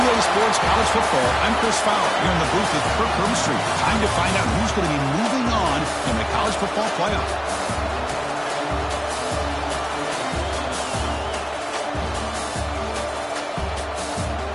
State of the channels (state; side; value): identical; both; correlation 1.00